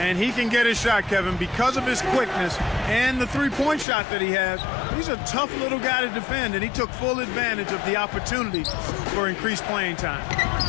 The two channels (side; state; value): right; drops out; at 3.9 s